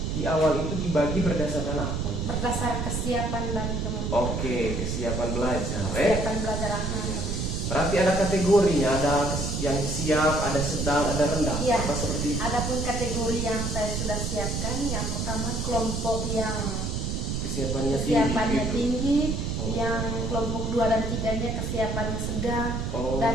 di awal itu dibagi berdasarkan apa? Berdasar kesiapan dan kemampuan. Oke, kesiapan belajar. Kesiapan belajar anak. Iya. Berarti ada kategorinya, ada yang siap, ada sedang, ada rendah. Iya. Apa seperti itu? Adapun kategori yang saya sudah siapkan, yang pertama kelompok yang Kesiapannya kesiapannya gitu. tinggi, Yang kelompok 2 dan 3-nya kesiapannya sedang, dan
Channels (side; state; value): right; noise; rumble, 1 dB below the sound